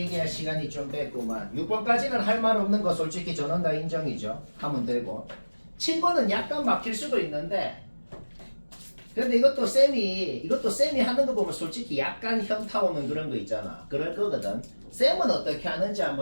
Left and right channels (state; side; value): inverted; both; correlation -1.00